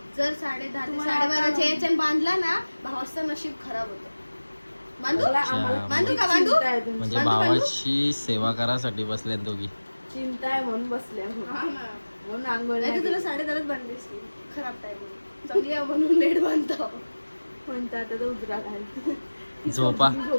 जर 10:30 ते 12:30च्या याच्यात बांधला ना, भावाचं नशीब खराब होतं. बांधू का बांधू? म्हणजे भावाची सेवा करासाठी बसल्यात दोघी. चिंता आहे म्हणून बसल्या म्हणून आंघोळ नाही तर तुला 10:30च बांधली असती. खराब टाइम चांगली आहे म्हणून लेट बांधतो. म्हणतात आता तर उजरा घाल.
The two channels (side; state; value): both; inverted; correlation -1.00